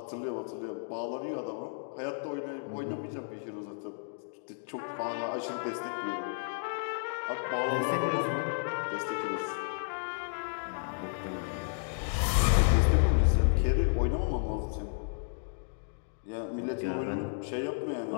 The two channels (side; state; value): right; silent; digital silence